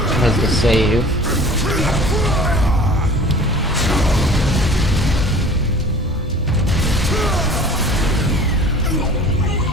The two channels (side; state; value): both; normal; correlation 0.45